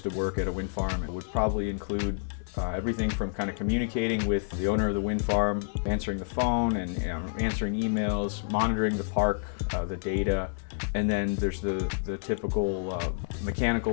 to work at a wind farm, it would probably include everything from kind of communicating with the owner of the wind farm, answering the phone and answering emails, monitoring the park, the data, and then there's the typical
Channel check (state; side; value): silent; right; 59 dB below the other